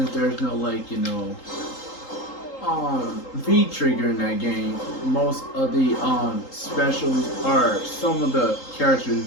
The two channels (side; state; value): right; late; 3.8 ms